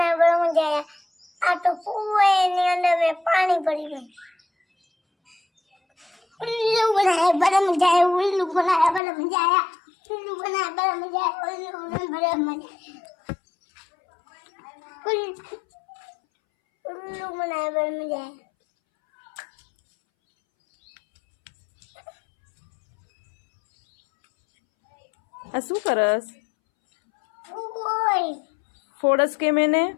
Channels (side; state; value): right; drops out; at 9.0 s